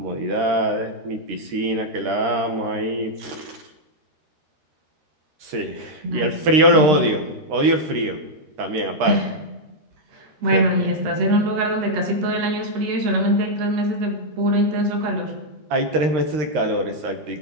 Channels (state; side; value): late; left; 13 ms